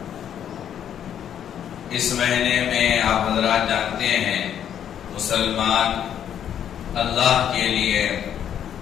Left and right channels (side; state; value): right; quieter; 9.5 dB